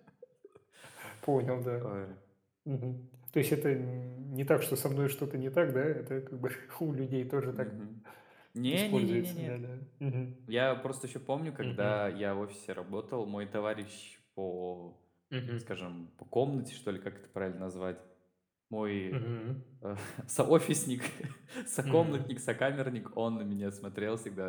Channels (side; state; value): both; identical; correlation 1.00